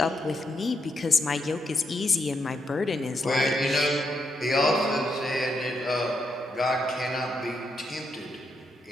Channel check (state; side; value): normal; both; correlation 0.81